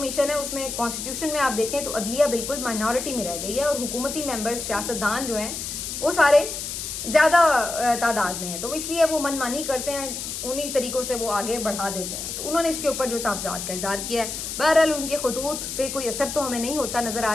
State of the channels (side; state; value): left; noise; hiss, 6 dB below the sound